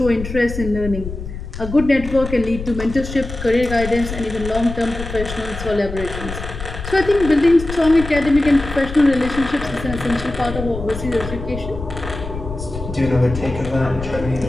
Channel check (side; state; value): left; noise; rumble, 9 dB below the sound